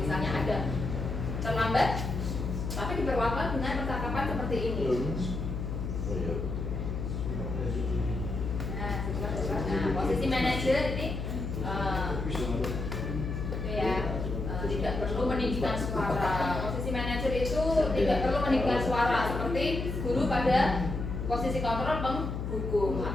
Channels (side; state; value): left; noise; hum, 4 dB below the sound